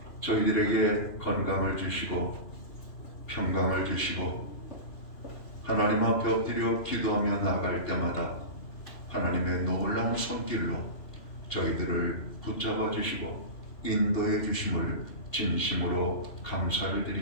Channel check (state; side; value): late; right; 3.0 ms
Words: 저희들에게 건강을 주시고 평강을 주시고 하나님 앞에 엎드려 기도하며 나아갈 때마다 하나님의 놀라운 손길로 저희들을 붙잡아 주시고 인도해 주심을 진심으로 감사를